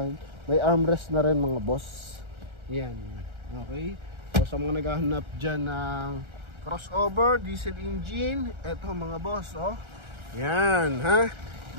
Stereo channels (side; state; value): left; late; 1.4 ms